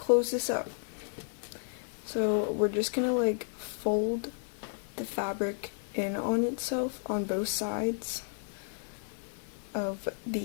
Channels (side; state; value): right; silent; digital silence